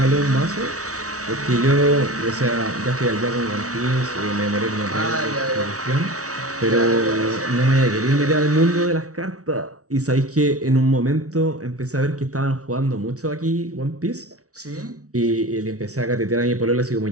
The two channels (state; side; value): late; left; 0.66 ms